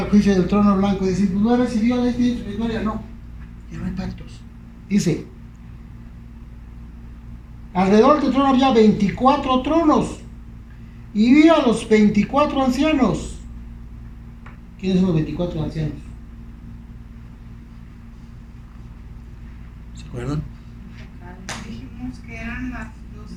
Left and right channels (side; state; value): both; identical; correlation 1.00